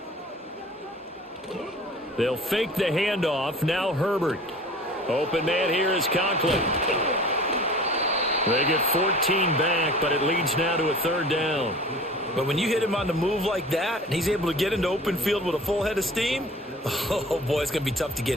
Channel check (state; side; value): normal; both; correlation 0.43